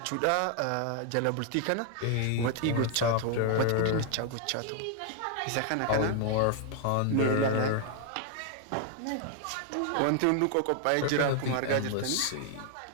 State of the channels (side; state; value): both; different; correlation 0.00